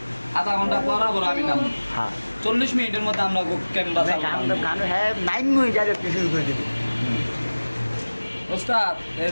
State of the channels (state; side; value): inverted; both; correlation -1.00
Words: আধা ঘন্টা পরাবর আমি নাম হ্যাঁ 40 মিনিটের মধ্যে আমরা ক্যামেরা গান তো গান হ্যাঁ 9 মিনিট ডাইরেক্ট শুরু করে দিবি ওস্তাদ এই